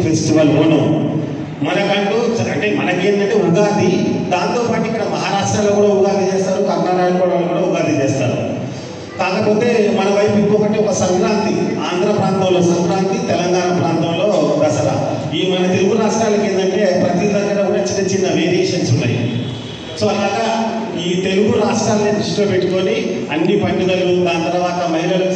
ఫెస్టివల్ ఓనం, మనకంటూ అంటే మనకేంటంటే ఉగాది, దాంతోపాటు ఇక్కడ మహారాష్ట్రలో కూడా ఉగాది చేస్తారు, కర్ణాటకలో కూడా ఉగాది చేస్తారు. కాకపోతే మన వైపు ఇంకొకటి ఒక సంక్రాంతి, ఆంధ్ర ప్రాంతంలో సంక్రాంతి, తెలంగాణ ప్రాంతంలో దసరా. ఈ మన తెలుగు రాష్ట్రాలకి ఏంటంటే ప్రతి దగ్గర కూడా చిన్న చిన్న వేరియేషన్స్ ఉన్నాయి. సో అలాగా ఈ తెలుగు రాష్ట్రాలని దృష్టిలో పెట్టుకొని అన్ని పండుగలు, దాని తర్వాత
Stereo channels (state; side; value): identical; both; correlation 1.00